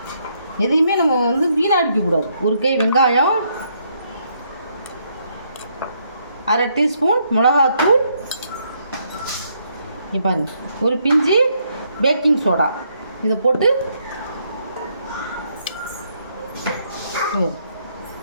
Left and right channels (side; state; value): both; inverted; correlation -0.73